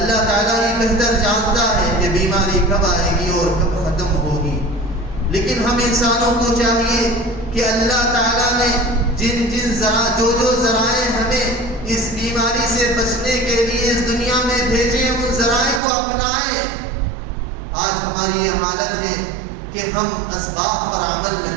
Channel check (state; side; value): drops out; left; at 15.8 s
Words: تعالیٰ ہی بہتر جانتا ہے کہ بیماری کب آئے گی اور کب ختم ہوگی. لیکن ہم انسانوں کو چاہیے کہ اللہ تعالیٰ نے جو ذرائع ہمیں اس بیماری سے بچنے کے لیے اس دنیا میں بھیجے، ان ذرائع کو اپنائیں. آج ہماری یہ حالت ہے کہ ہم اسباب پر عمل